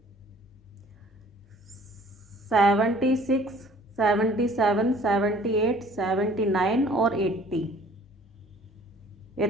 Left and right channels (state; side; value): normal; both; correlation 0.54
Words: 76, 77, 78, 79 और 80